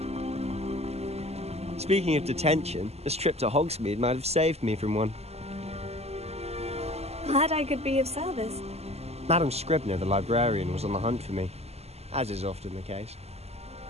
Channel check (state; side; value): late; left; 0.30 ms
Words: Speaking of detention, this trip to Hogsmeade might have saved me from one. Glad I could be of service. Madam Scribner, the librarian, was on the hunt for me, as is often the case.